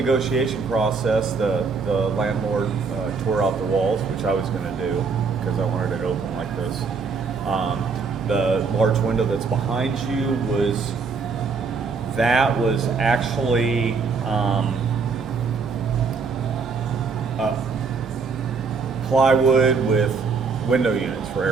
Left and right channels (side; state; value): left; quieter; 5.0 dB